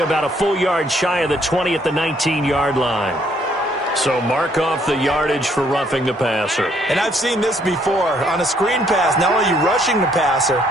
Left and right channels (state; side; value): normal; both; correlation 0.67